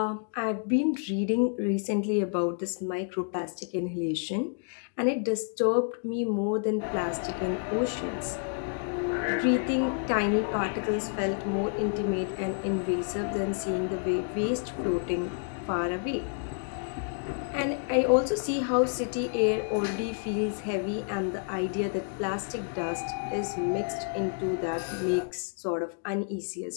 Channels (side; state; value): right; silent; 58 dB below the other